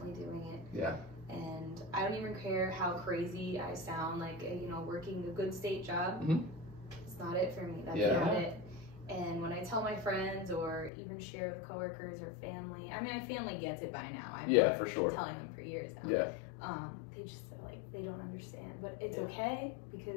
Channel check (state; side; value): drops out; right; at 10.9 s